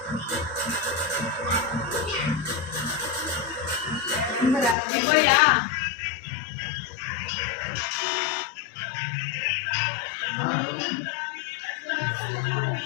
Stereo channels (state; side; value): drops out; right; at 4.8 s